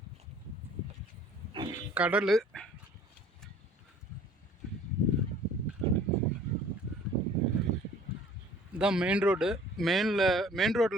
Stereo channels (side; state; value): both; normal; correlation 0.52